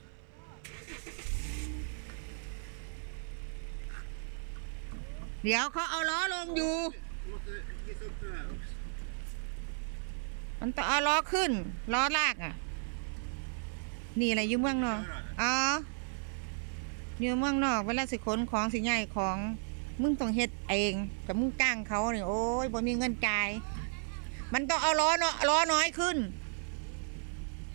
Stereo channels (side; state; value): left; silent; 55 dB below the other